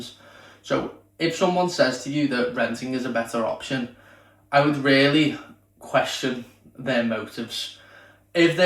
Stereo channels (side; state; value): both; identical; correlation 1.00